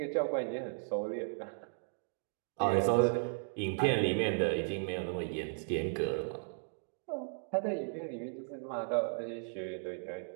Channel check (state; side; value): silent; left; digital silence